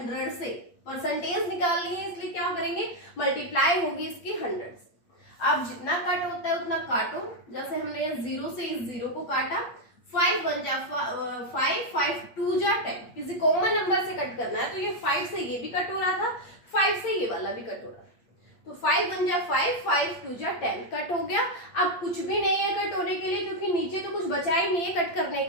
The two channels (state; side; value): late; right; 8.6 ms